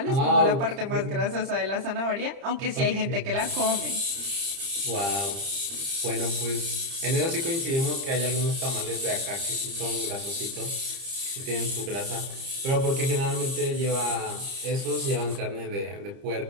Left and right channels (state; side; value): late; left; 30 ms